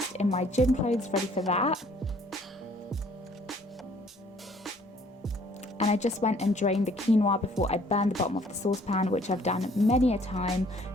in my gym clothes ready for that. And I just went and drained the quinoa before I burned the bottom of the saucepan, which I've done many a time.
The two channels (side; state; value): both; normal; correlation 0.59